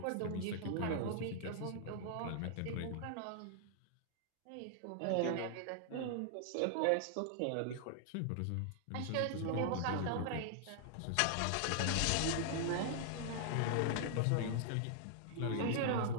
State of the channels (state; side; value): different; both; correlation -0.01